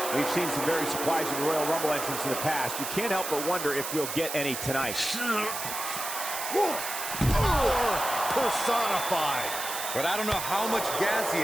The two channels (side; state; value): right; noise; hiss, 5 dB below the sound